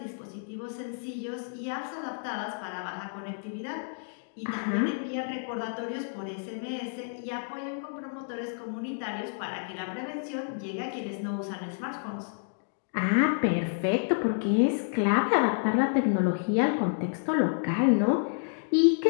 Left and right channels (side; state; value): right; silent; digital silence